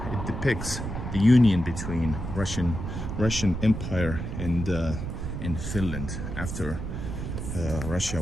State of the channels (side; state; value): right; noise; rumble, 5 dB below the sound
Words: depicts the union between Russian Empire and Finland after Russia